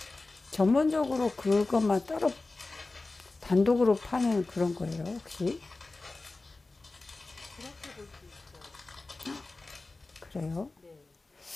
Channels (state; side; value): quieter; right; 3.4 dB